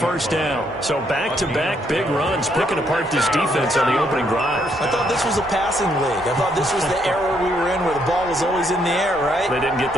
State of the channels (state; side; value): normal; both; correlation 0.73